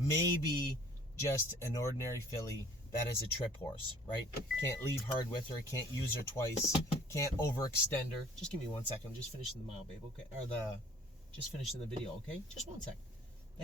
just an ordinary filly that is a trip horse, right? Can't leave hard with her, can't use her twice, can't overextend her. Just give me 1 second. I'm just finishing the mile, babe, okay? Just finishing the video, okay? Just 1 sec.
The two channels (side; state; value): both; normal; correlation 0.53